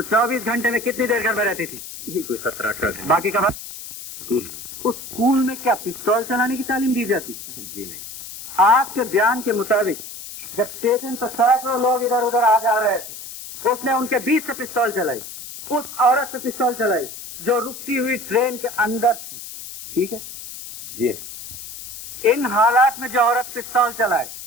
24 घंटे में कितनी देर घर में रहती थी? ये कोई 17-18 घंटे। बाकी का स्कूल। उस स्कूल में क्या पिस्तौल चलाने की तालीम दी जाती? जी नहीं। आपके बयान के मुताबिक जब स्टेशन पर सैकड़ों लोग इधर उधर आ जा रहे थे, उसने उनके बीच से पिस्तौल चलाई, उस औरत से पिस्तौल चलाई जो रुकती हुई ट्रेन के अंदर थी, ठीक है? जी। इन हालात में जो औरत पिस्तौल चलाए,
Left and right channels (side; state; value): left; noise; hiss, 12 dB below the sound